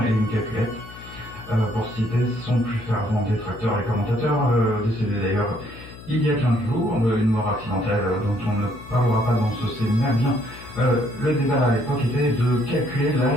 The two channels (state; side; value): noise; left; hum, 17 dB below the sound